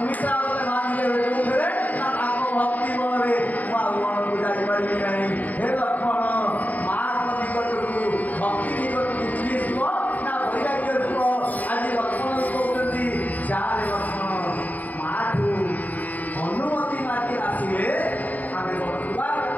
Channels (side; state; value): right; late; 0.077 ms